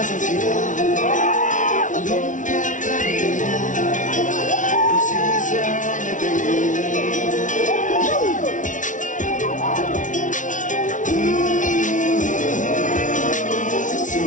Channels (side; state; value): right; late; 0.37 ms